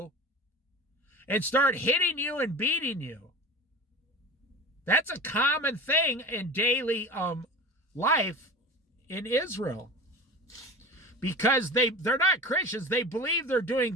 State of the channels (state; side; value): normal; both; correlation 0.34